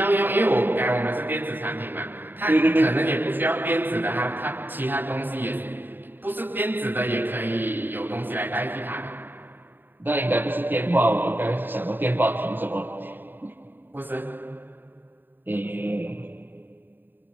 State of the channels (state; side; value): late; left; 0.093 ms